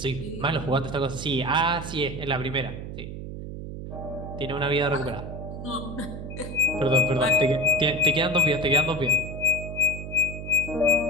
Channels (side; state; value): right; noise; hum, 9 dB below the sound